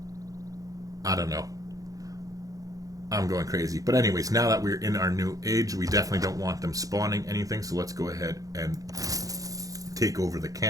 I don't know. I'm going crazy. But anyways, now that we're in our new age, we definitely don't want them spawning anything. So let's go ahead and take over the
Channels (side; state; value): left; late; 0.17 ms